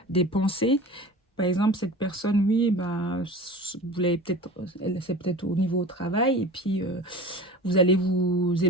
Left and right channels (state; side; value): normal; both; correlation 0.36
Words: des pensées. Par exemple, cette personne, oui, ben, vous l'avez peut-être, c'est peut-être au niveau au travail, et puis vous allez vous